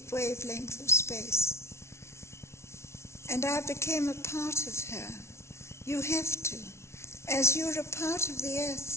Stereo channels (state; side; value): late; right; 0.13 ms